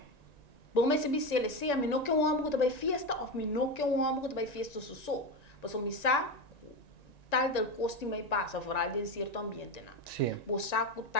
Bom mas se bisele se a mim não que um homem que vai festa ou mim não que um homem que vai festa so. Mas o misa tal del costume mai passa, fora de certo ambiente não. Sim. Bo saco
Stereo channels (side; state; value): right; late; 1.9 ms